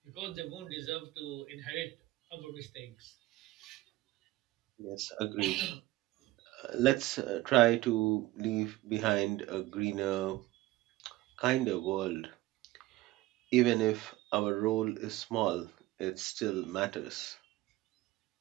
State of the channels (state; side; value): quieter; left; 17.9 dB